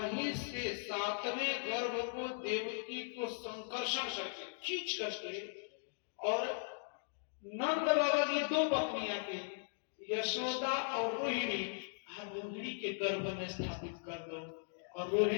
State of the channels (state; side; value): silent; right; digital silence